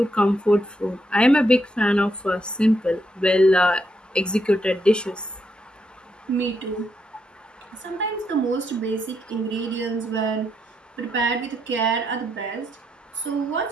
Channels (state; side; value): normal; both; correlation 0.79